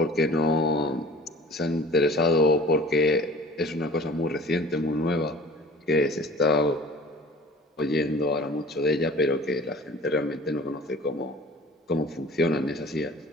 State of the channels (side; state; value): both; normal; correlation 0.45